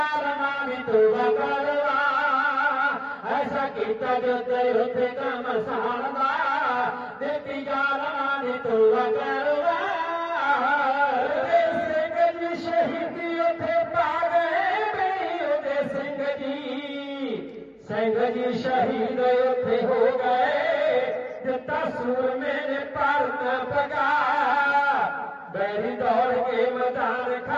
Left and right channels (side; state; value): both; identical; correlation 1.00